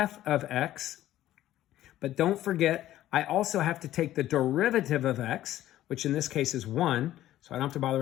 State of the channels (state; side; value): quieter; right; 13.7 dB